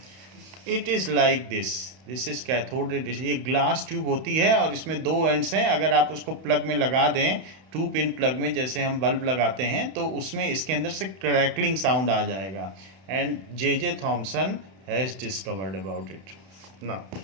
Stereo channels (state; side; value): late; left; 31 ms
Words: It is like this. This is cathode ray discharge. ये ग्लास ट्यूब होती है और इसमें दो एंड्स हैं. अगर आप उसको प्लग में लगा दें, 2 पिन प्लग में, जैसे हम बल्ब लगाते हैं, तो उसमें इसके अंदर से क्रैकलिंग साउंड आ जाएगा. And J.J. Thomson has discovered about it. Now